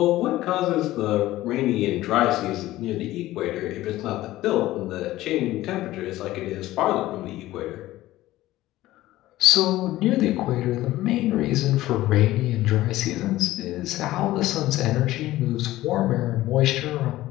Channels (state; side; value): quieter; right; 16.1 dB